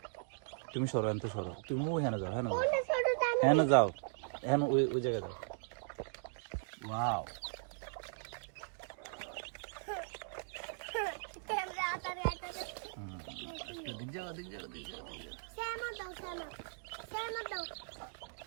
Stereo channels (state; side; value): silent; left; digital silence